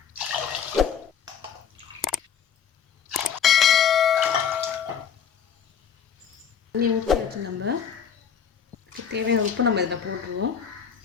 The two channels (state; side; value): quieter; right; 7.6 dB